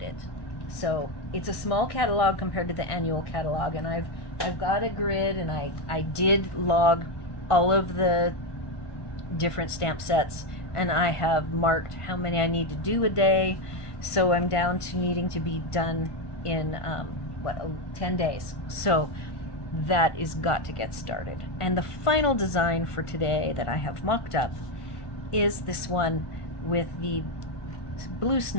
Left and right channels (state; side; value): late; right; 1.5 ms